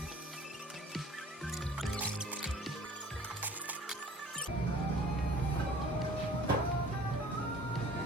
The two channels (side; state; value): both; normal; correlation 0.49